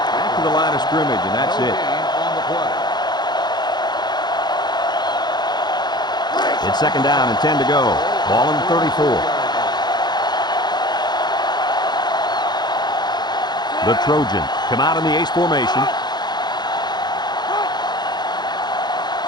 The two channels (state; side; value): late; right; 0.21 ms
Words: to the line of scrimmage, and that's it. On the play. It's 2nd down and 10 to go. Ball on the 34. The Trojans come out in the ace formation.